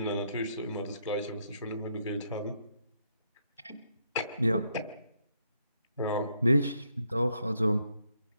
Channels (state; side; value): inverted; both; correlation -0.74